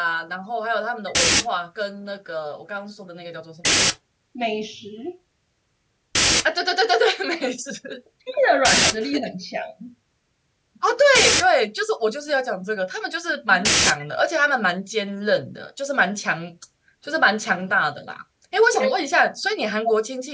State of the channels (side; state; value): both; identical; correlation 1.00